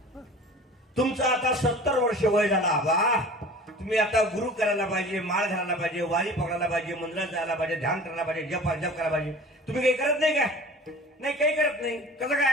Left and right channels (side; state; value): both; normal; correlation 0.42